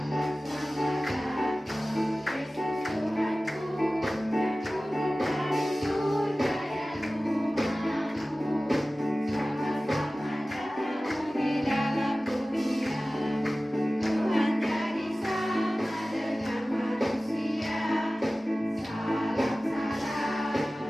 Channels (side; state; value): both; normal; correlation 0.97